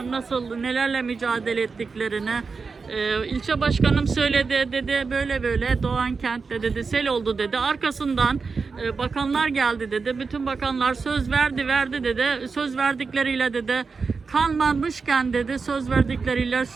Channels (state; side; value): quieter; left; 4.8 dB